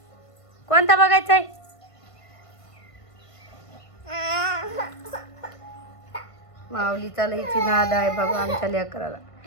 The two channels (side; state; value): right; late; 1.5 ms